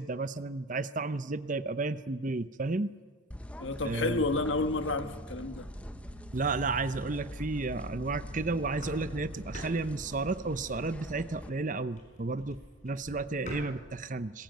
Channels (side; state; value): both; normal; correlation 0.34